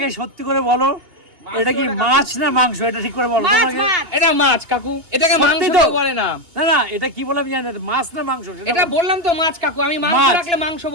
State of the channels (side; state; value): left; late; 2.8 ms